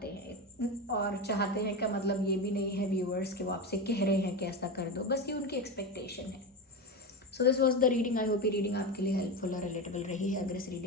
हैं, और चाहते हैं का मतलब ये भी नहीं है व्यूअर्स कि वो आपसे कह रहे हैं कि ऐसा कर दो, बस ये उनकी एक्सपेक्टेशन है। So this was the reading. I hope ये रीडिंग आपके लिए हेल्पफुल और रिलेटेबल रही है। अगर इस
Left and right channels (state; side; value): normal; both; correlation 0.19